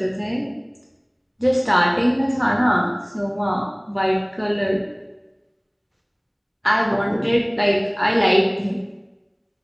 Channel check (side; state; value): both; identical; correlation 1.00